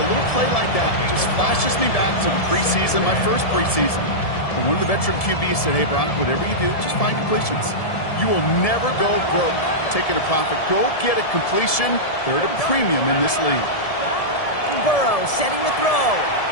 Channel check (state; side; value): late; right; 1.7 ms